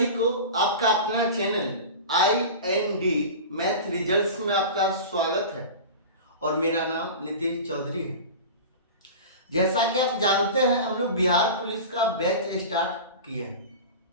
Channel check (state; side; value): inverted; both; correlation -0.31